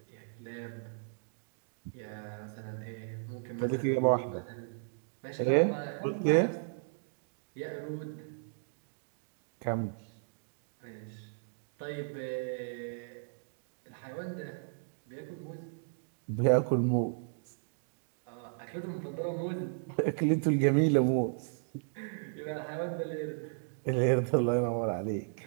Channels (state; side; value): silent; left; digital silence